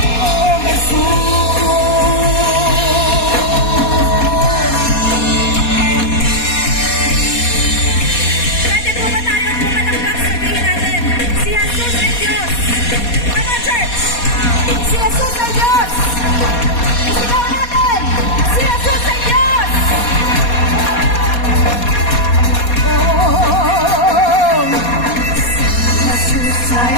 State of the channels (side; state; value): right; late; 4.2 ms